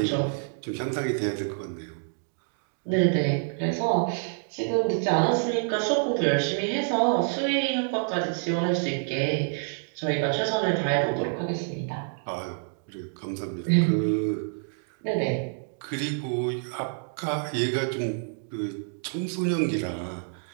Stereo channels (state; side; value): silent; left; digital silence